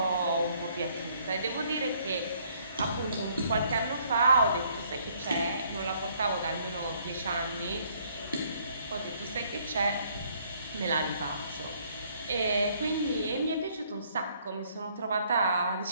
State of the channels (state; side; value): inverted; both; correlation -0.65